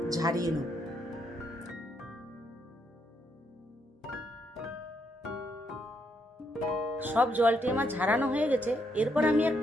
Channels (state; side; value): normal; both; correlation 0.76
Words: ঝারিয়ে নেব। সব জলটি আমার ঝারানো হয়ে গেছে। এরপর আমি